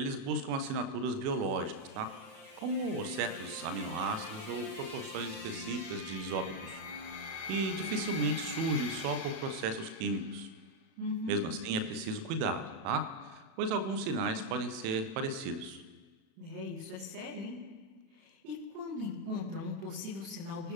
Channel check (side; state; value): left; late; 36 ms